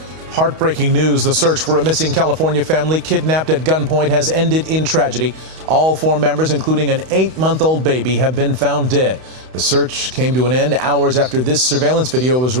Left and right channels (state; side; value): late; left; 31 ms